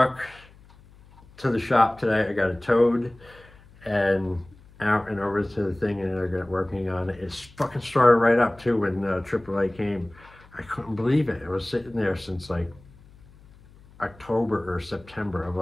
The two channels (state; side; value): noise; left; hum, 25 dB below the sound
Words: to the shop today. I got it towed and out and over to the thing, and I got working on it. It's fucking started right up too when AAA came. I couldn't believe it. It was sitting there since like October or September of